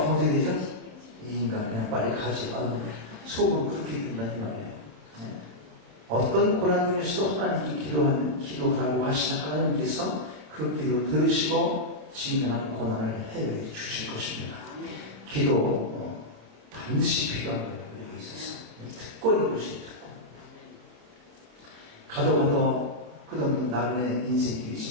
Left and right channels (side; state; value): left; late; 26 ms